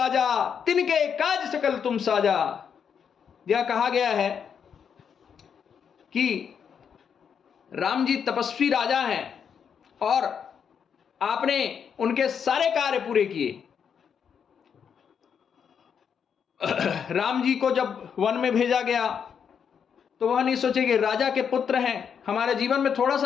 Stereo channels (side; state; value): right; quieter; 7.3 dB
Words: तिनके काज सकल तुम साजा। यह कहा गया है कि राम जी तपस्वी राजा हैं और आपने उनके सारे कार्य पूरे किए। राम जी को जब वन में भेजा गया तो वह नहीं सोचे कि राजा के पुत्र हैं, हमारे जीवन में थोड़ा